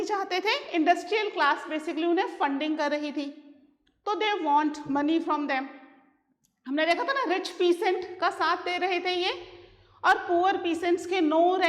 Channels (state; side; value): identical; both; correlation 1.00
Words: चाहते थे? इंडस्ट्रियल क्लास बेसिकली उन्हें फंडिंग कर रही थी, तो they want money from them. हमने देखा था ना, रिच पीसेंट का साथ दे रहे थे ये, और पुअर पीसेंट्स के नो